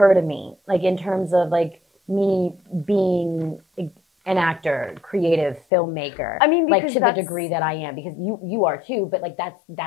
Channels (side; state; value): right; drops out; at 5.7 s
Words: to me, like in terms of like me being an actor, creative filmmaker. I mean, like to the degree that I am, because you are too, but like that